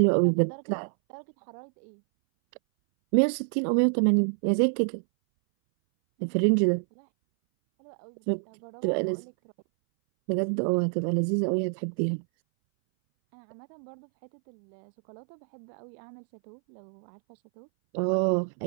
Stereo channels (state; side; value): silent; left; 60 dB below the other